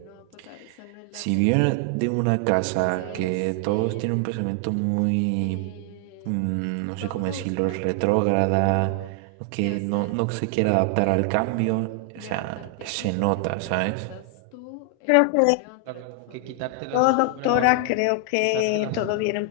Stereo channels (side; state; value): both; different; correlation 0.00